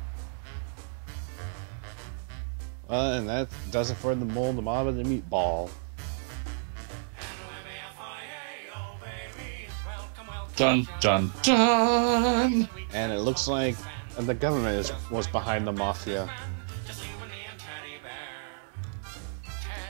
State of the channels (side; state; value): left; silent; digital silence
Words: And that does it for the mole, the mob, and the meatball. Dun, dun, dun! And it looks like the government was behind the mafia.